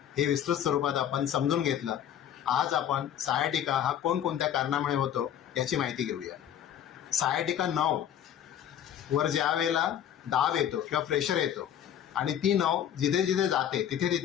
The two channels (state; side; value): quieter; right; 10.1 dB